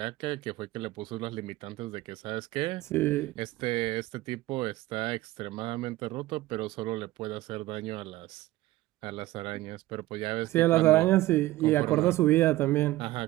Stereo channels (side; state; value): left; quieter; 17.0 dB